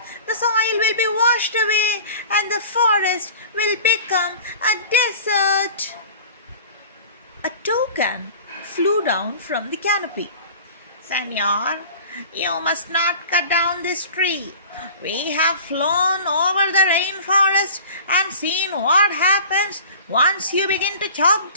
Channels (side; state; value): both; inverted; correlation -0.42